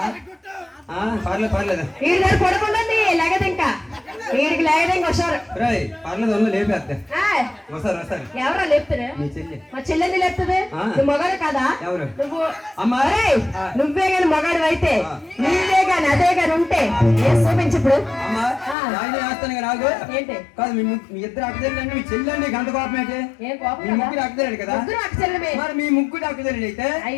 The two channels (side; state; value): right; drops out; at 18.8 s